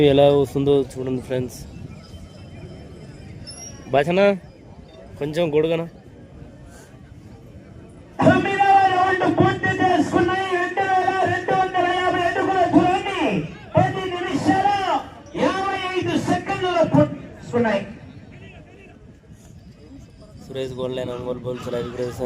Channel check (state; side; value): identical; both; correlation 1.00